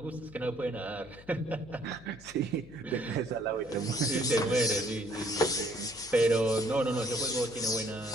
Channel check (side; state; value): left; noise; hum, 21 dB below the sound